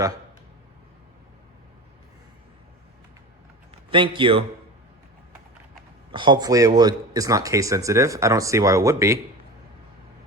Thank you. Hopefully it's not case sensitive. I don't see why it would be.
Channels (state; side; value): normal; both; correlation 0.30